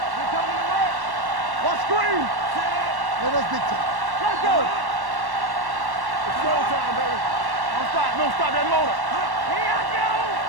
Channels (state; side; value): late; left; 1.1 ms